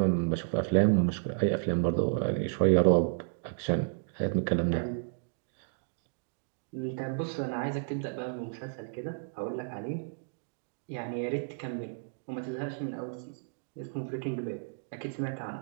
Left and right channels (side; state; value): left; silent; digital silence